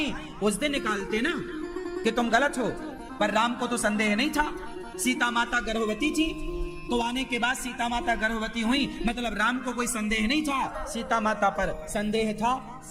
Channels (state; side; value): identical; both; correlation 1.00